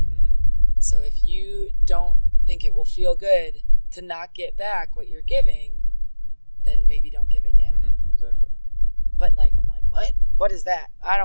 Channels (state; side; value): inverted; both; correlation -1.00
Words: So if you don't think it will feel good to not get back what you're giving, then maybe don't give it yet. Exactly. But like, I'm like, what? What is that? I